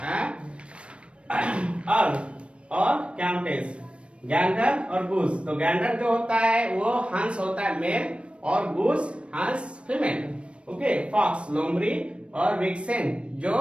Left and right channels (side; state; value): left; late; 0.059 ms